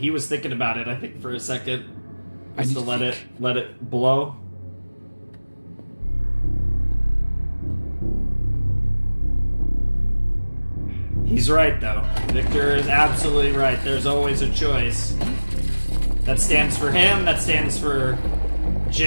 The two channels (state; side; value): inverted; both; correlation -1.00